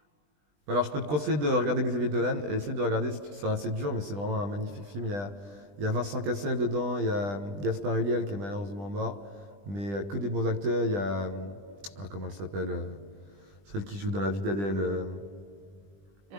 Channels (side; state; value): left; late; 20 ms